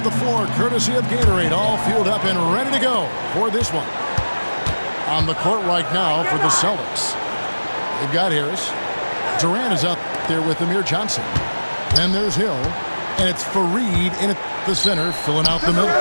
the floor, courtesy of Gatorade, all fueled up and ready to go for this one. On the court right now for the Celtics. They've got Harris. Durant is out there with Amir Johnson. Then there's Hill. And it's Fareed in at the center, filling out the middle.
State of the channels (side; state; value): both; inverted; correlation -1.00